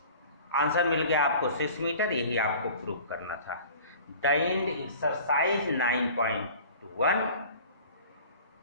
Answer मिल गया आपको 6 मीटर, यही आपको प्रूव करना था। The end exercise 9.1।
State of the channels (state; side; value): inverted; both; correlation -0.44